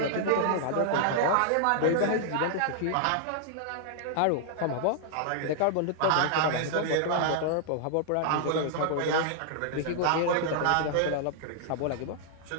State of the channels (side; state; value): both; different; correlation -0.01